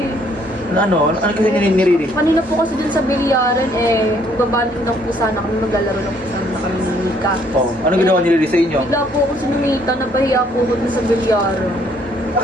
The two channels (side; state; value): both; normal; correlation 0.65